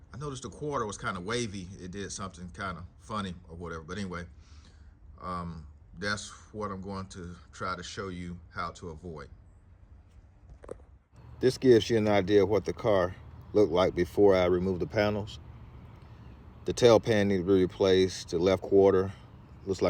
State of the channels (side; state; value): both; identical; correlation 1.00